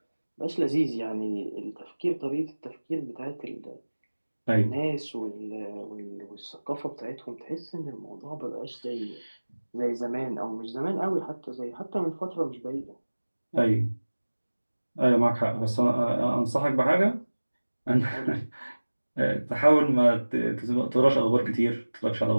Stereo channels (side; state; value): both; inverted; correlation -1.00